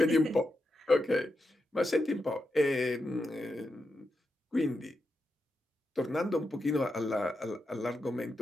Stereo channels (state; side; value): normal; both; correlation 0.87